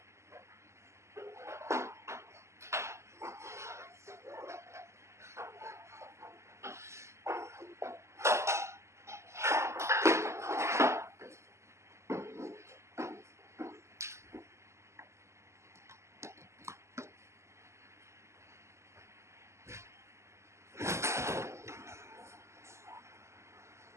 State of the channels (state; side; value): late; left; 0.13 ms